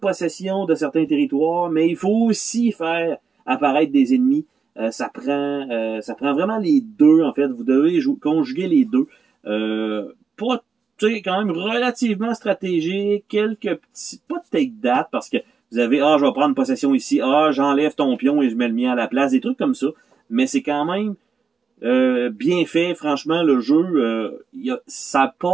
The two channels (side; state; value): left; quieter; 5.3 dB